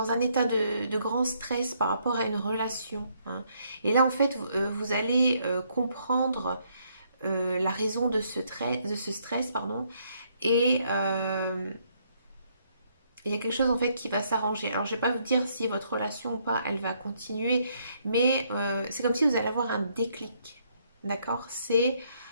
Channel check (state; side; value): inverted; both; correlation -0.71